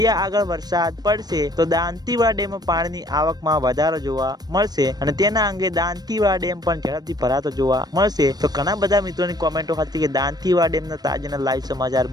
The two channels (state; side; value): late; left; 0.19 ms